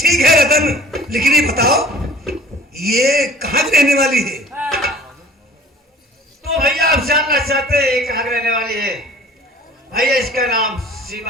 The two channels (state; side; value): normal; both; correlation 0.47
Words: है रतन, लेकिन ये बताओ ये कहाँ की रहने वाली है? तो भैया आप जानना चाहते हैं कहाँ रहने वाली है? भैया इसका नाम